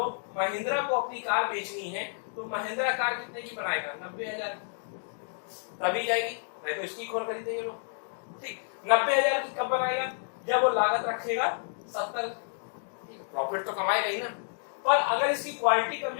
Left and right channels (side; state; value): right; silent; digital silence